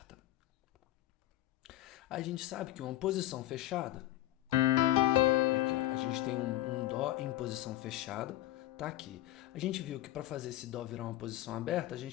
A gente sabe que uma posição fechada, aqui, ó, a gente tem um Dó em posição fechada, tá aqui. A gente viu que para fazer esse Dó virar uma posição aberta, a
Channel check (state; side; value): quieter; right; 15.4 dB